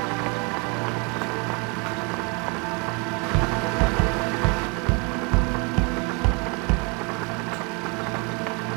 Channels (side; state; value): left; quieter; 31.8 dB